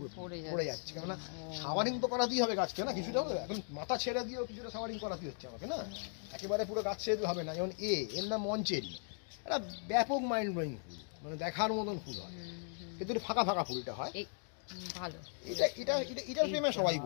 পড়ে যাচ্ছে। কেননা শাওয়ারিং তো করাতেই হবে গাছকে না, কিছুটা হবে। এখন মাথা ছেড়ে দিয়েও কিছুটা শাওয়ারিং করাতেই হচ্ছে আমাকে না, একেবারে পুরো গাছ ছেড়ে দিলে হবে না। যেমন এর নাম মঞ্চেরি, একটা ব্যাপক মাইন্ড ব্লোয়িং ফুল, মানে দেখার মতন ফুল হয়, কিন্তু একটু ফাঁকা ফাঁকা ফুল এটা হয়। ভালো, এটার প্রেমে সবাই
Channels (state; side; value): silent; right; 53 dB below the other